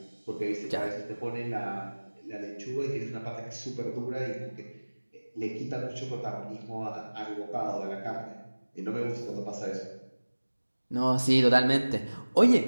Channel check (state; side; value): inverted; both; correlation -1.00